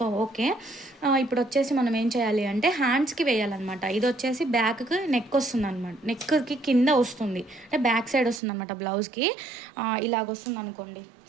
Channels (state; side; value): drops out; left; at 8.4 s